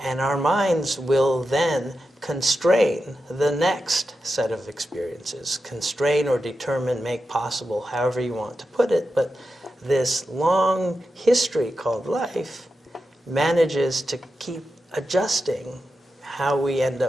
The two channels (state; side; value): normal; both; correlation 0.89